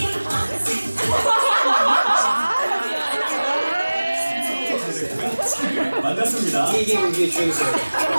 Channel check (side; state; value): both; inverted; correlation -1.00